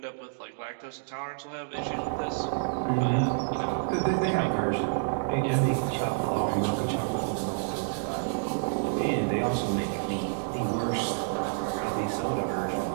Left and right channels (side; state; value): left; silent; digital silence